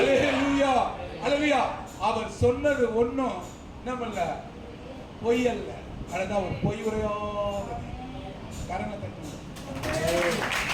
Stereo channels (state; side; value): identical; both; correlation 1.00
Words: அல்லேலூயா. அவர் சொன்னது ஒண்ணும் நம்மள பொய் அல்ல. அதுதான் ஒரு பொய் உரையாத கரங்களை தட்டி.